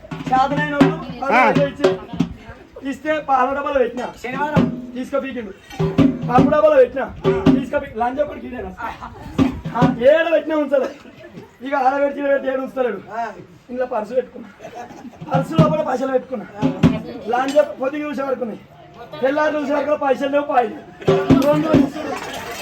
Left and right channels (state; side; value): identical; both; correlation 1.00